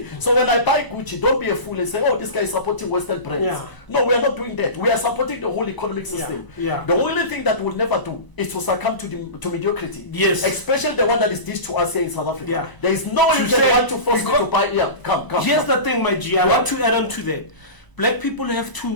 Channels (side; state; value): right; late; 1.0 ms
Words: So when I buy Gucci, don't be a fool and say, oh, this guy is supporting Western brands. No, we are not doing that. We are supporting the whole economic system. The only thing that we'll never do is to succumb to mediocrity. Especially the one that is dished to us here in South Africa. There is no way you can want to force me to buy. Come. Here's the thing, my G. I want to add on to that. Black people have